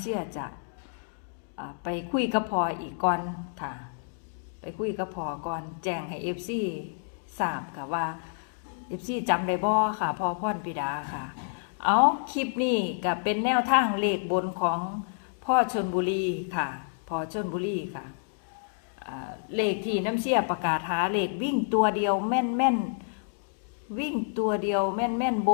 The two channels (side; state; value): right; silent; digital silence